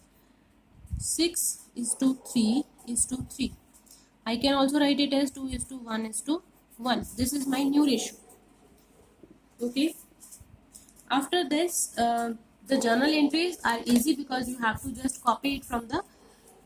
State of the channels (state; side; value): identical; both; correlation 1.00